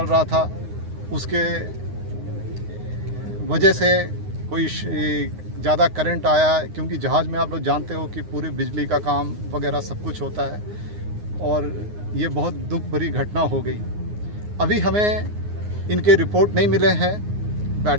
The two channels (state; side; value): late; left; 9.6 ms